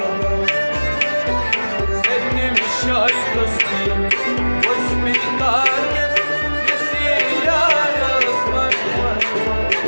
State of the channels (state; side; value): inverted; both; correlation -1.00